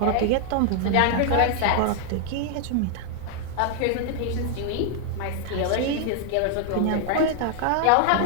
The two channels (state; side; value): different; both; correlation 0.00